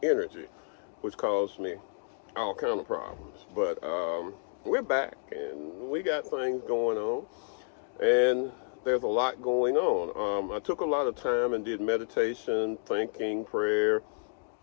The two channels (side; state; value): right; silent; digital silence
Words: energy, which caused me all kind of problems. But we're back, and we got things going on, and there's a lot going on. I took a lot of time and did meditation, thinking, prayer,